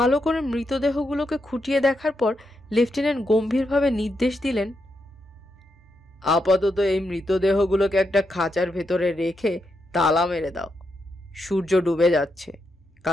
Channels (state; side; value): normal; both; correlation 0.83